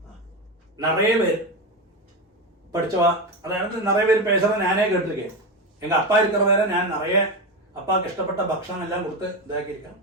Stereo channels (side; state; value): both; normal; correlation 0.16